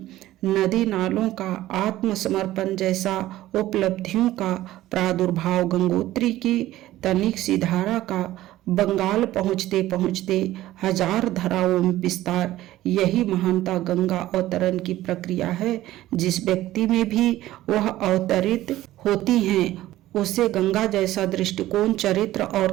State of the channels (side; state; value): left; quieter; 15.2 dB